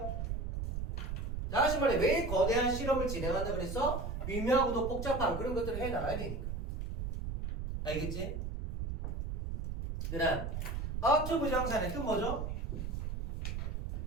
다시 말해 왜 거대한 실험을 진행한다 그랬어? 미묘하고도 복잡한 그런 것들을 해나가야 되니까. 알겠지? 그 다음 ought 부정사는 또 뭐죠?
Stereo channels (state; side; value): noise; right; rumble, 4 dB below the sound